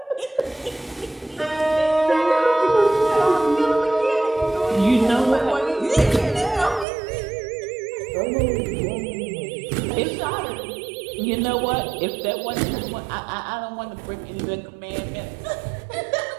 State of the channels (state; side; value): drops out; left; at 6.9 s